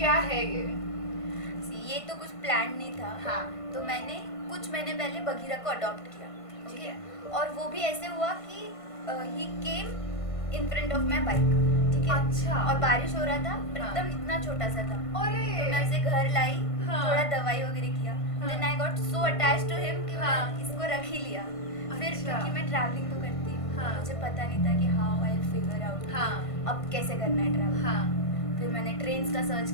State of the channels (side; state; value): right; late; 1.5 ms